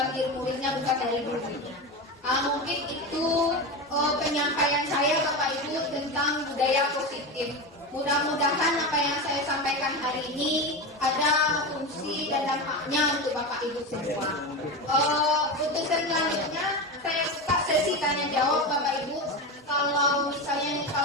diri muridnya, bukan dari gurunya. Mungkin itu penyampaian saya, Bapak Ibu, tentang budaya positif. Mudah-mudahan apa yang saya sampaikan hari ini ada fungsi dan dampaknya untuk Bapak Ibu semua. Untuk selanjutnya saya buka sesi tanya jawab, Bapak Ibu. Kalau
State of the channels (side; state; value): both; normal; correlation 0.20